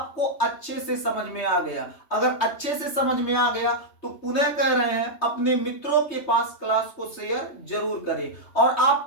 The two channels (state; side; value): late; right; 3.2 ms